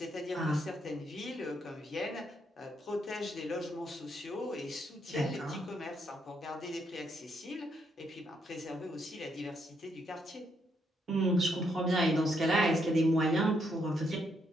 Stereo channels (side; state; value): both; normal; correlation 0.76